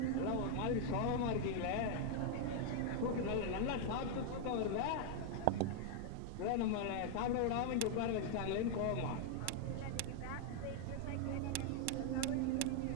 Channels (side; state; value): both; different; correlation 0.00